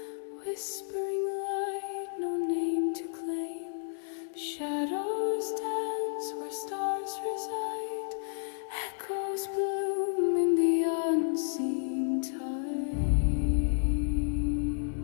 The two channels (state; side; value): silent; right; digital silence